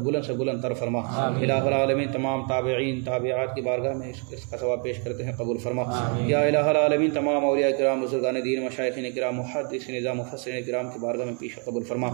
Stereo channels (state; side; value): quieter; left; 39.4 dB